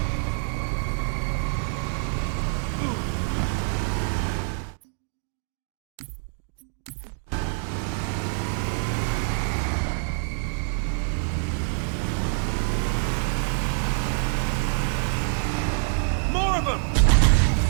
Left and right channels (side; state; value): left; silent; 61 dB below the other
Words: More of them!